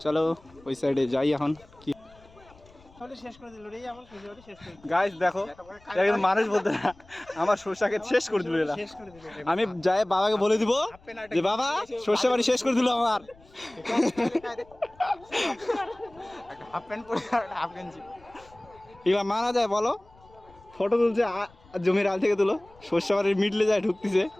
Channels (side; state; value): left; noise; rumble, 27 dB below the sound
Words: চলো ওই সাইডে যাই এখন। কি শেষ করে দিল রে, আমার শেষ করে গাইস দেখো, একজন মানুষ বলতে না, আমার সরষাকে শেষ করে দিল এরা। শেষ করে দিল। আমি যাই বাবাকে বলে দিব যে বাবা সর্ষে বাড়ি শেষ করে দিল আমার। হাফ প্যান্ট পরে আর হাফ গেঞ্জি। এগুলা মানা যায় বলো? ফটো তুলছে জমির আল থেকে তুলো, সর্ষে বাড়ির মিডলে যায় ঢুকতেছে।